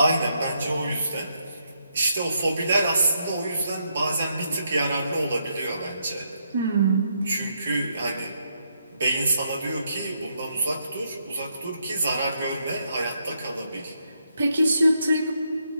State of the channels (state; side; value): inverted; both; correlation -0.78